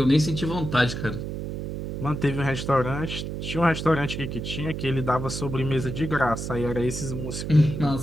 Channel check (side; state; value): right; noise; hum, 5 dB below the sound